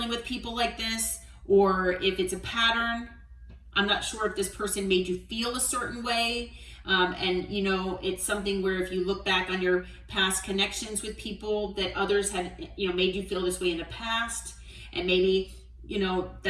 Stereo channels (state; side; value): identical; both; correlation 1.00